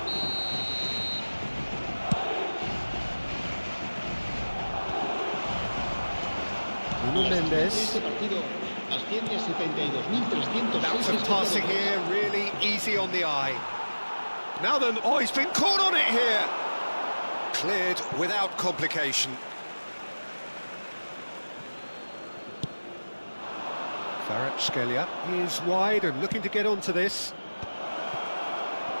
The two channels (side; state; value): both; inverted; correlation -1.00